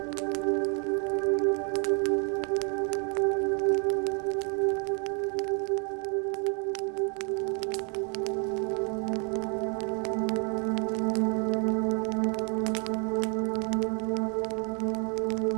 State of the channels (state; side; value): quieter; left; 38.2 dB